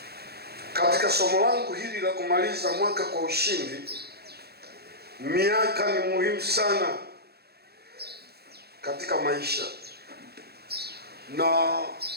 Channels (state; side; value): late; left; 0.46 ms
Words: katika somo langu hili la kumaliza mwaka kwa ushindi, miaka ni muhimu sana katika maisha. Na